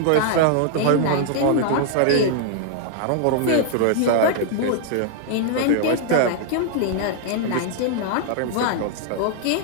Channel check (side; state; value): both; different; correlation 0.00